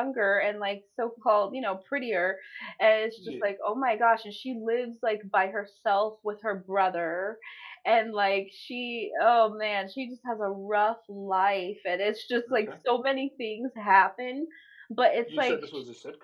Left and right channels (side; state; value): both; identical; correlation 1.00